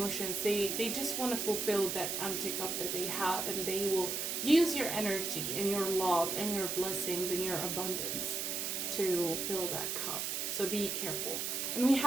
They just want to fulfill that empty cup that they have, and they will use your energy and your love and your blessings and your abundance to fill that cup. So be careful. And we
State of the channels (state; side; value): noise; right; hiss, 1 dB below the sound